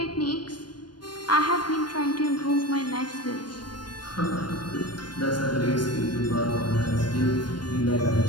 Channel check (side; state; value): right; late; 0.71 ms